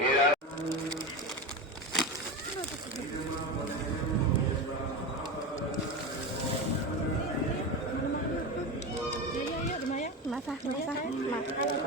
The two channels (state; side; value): normal; both; correlation 0.21